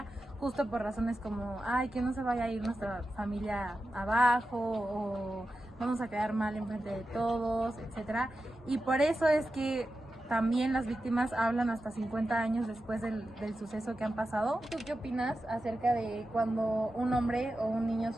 justo por razones como, ay, que no se vaya a ir nuestra familia abajo o vamos a quedar mal enfrente de todos, etcétera. Y por eso es que también las víctimas hablan hasta 50 años después del suceso que han pasado. ¿Tú qué opinas acerca de cuando un hombre o un niño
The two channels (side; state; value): both; normal; correlation 0.91